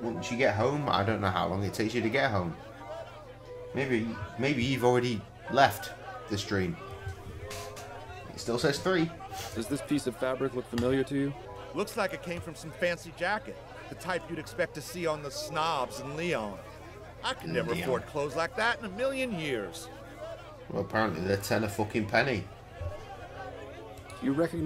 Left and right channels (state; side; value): identical; both; correlation 1.00